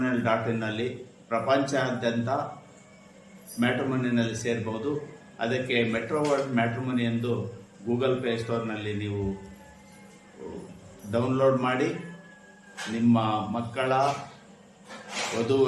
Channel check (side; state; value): both; identical; correlation 1.00